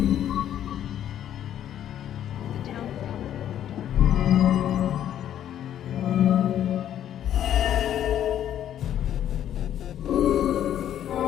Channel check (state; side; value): quieter; right; 10.7 dB